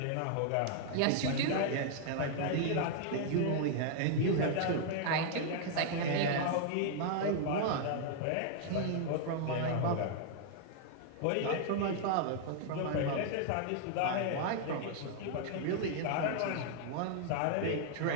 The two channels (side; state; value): both; different; correlation -0.01